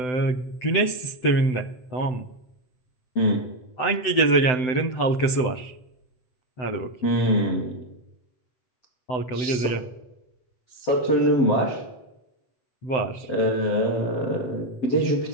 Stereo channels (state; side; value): late; right; 7.9 ms